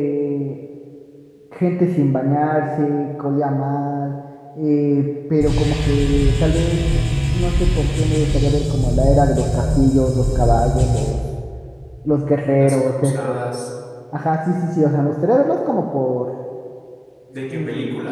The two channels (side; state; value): both; identical; correlation 1.00